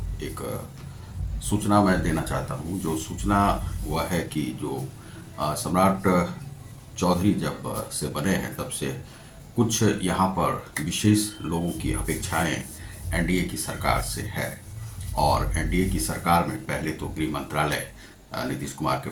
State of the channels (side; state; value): both; identical; correlation 1.00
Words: एक सूचना मैं देना चाहता हूँ। जो सूचना वह है कि जो सम्राट चौधरी जब से बने हैं तब से कुछ यहाँ पर विशेष लोगों की अपेक्षाएं एनडीए की सरकार से है। और एनडीए की सरकार में पहले तो गृह मंत्रालय नीतीश कुमार के